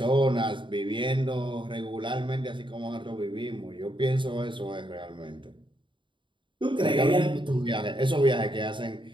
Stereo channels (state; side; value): late; left; 0.24 ms